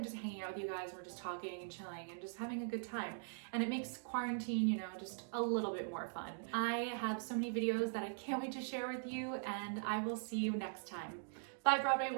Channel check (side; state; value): left; silent; digital silence